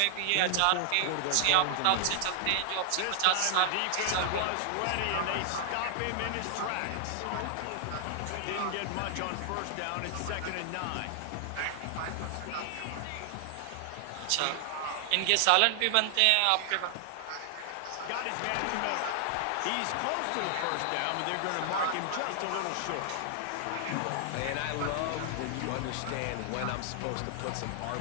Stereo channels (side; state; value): both; different; correlation 0.00